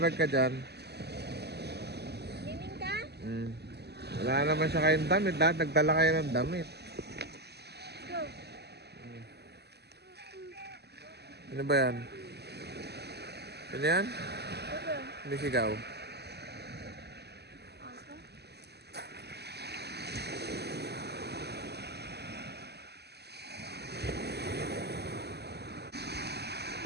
ka dyan. Swimming ka? Wala naman siya kayong damit. Lahat nagdala kayo ng damit. Go. Ano ba yan? Ano yan? Go. Hindi sigaw.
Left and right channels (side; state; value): left; late; 0.48 ms